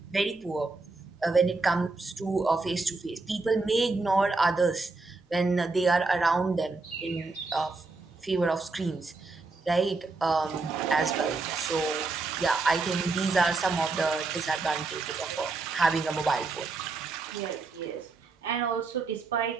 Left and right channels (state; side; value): quieter; left; 3.7 dB